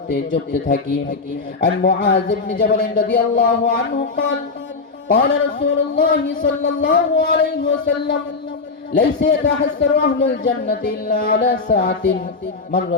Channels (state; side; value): quieter; right; 4.2 dB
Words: জপতে থাকি। আর মুআয ইবনে জাবাল রাদিয়াল্লাহু আনহু قال قال رسول الله صلى الله عليه وسلم ليس يتحسر أهل الجنة إلا على ساعة